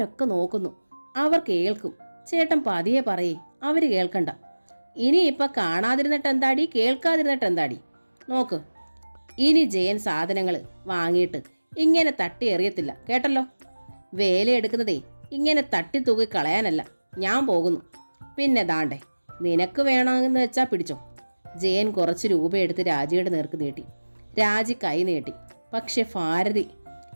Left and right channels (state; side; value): inverted; both; correlation -1.00